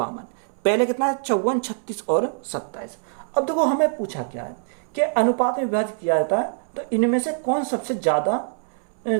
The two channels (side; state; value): left; silent; 63 dB below the other